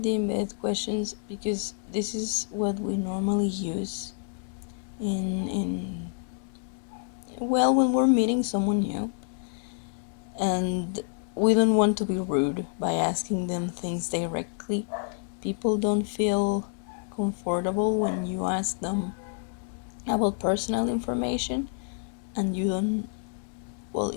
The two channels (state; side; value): silent; right; digital silence